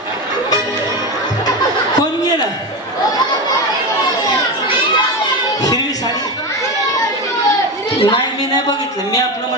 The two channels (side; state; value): both; normal; correlation 0.19